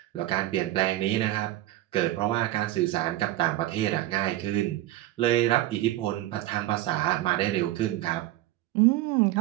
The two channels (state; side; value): quieter; left; 15.2 dB